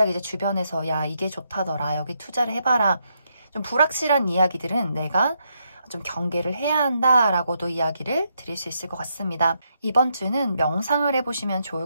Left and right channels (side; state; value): both; inverted; correlation -0.79